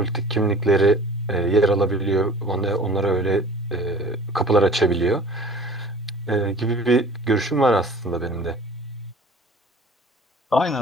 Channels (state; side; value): normal; both; correlation 0.45